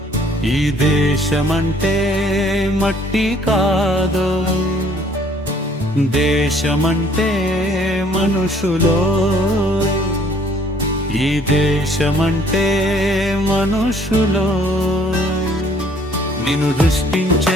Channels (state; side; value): normal; both; correlation 0.60